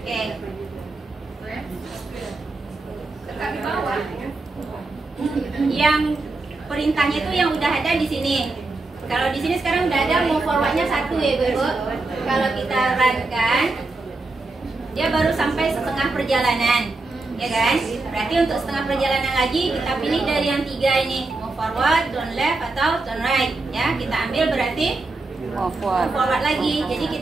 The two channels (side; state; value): left; quieter; 3.3 dB